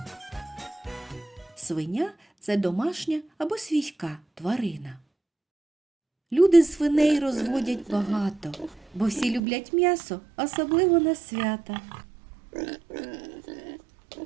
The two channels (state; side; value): drops out; left; at 9.4 s